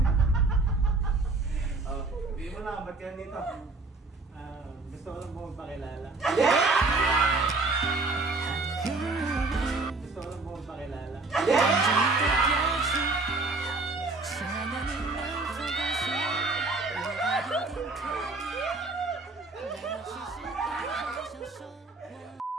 Hindi mo na, ba't yan dito? Gusto ko lang po magpakilala. Gusto ko lang po magpakilala.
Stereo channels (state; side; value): quieter; left; 3.5 dB